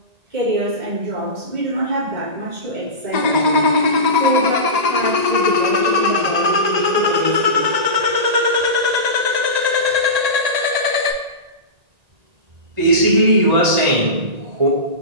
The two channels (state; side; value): late; left; 1.9 ms